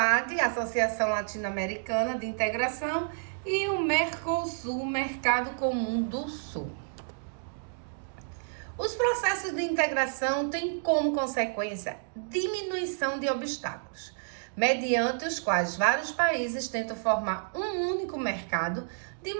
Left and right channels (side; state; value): left; silent; digital silence